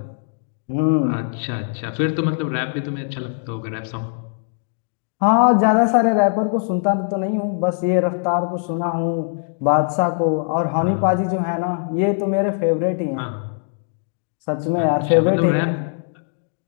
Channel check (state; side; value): silent; right; 65 dB below the other